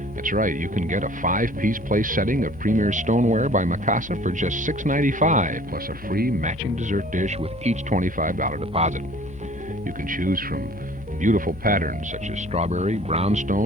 That's right, you can get a 5-piece place setting of premier stoneware by Mikasa for just $6.95, plus a free matching dessert dish with each $25 deposit. You can choose from beautiful patterns such as strawberry,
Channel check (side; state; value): both; normal; correlation 0.51